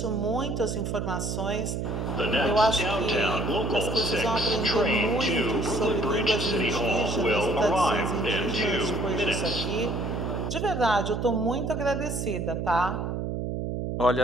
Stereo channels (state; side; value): noise; right; hum, 2 dB below the sound